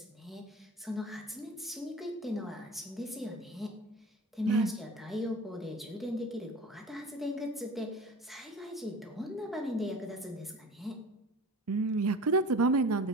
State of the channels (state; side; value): normal; both; correlation 0.38